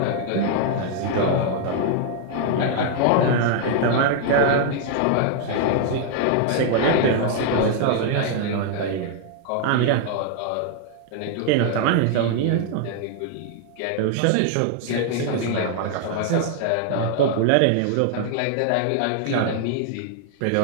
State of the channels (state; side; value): different; both; correlation 0.00